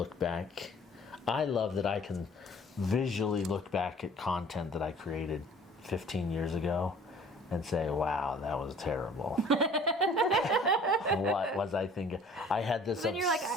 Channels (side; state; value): both; normal; correlation 0.51